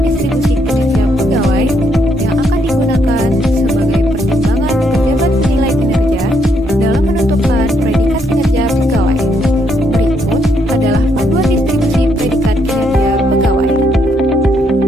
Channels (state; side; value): normal; both; correlation 0.74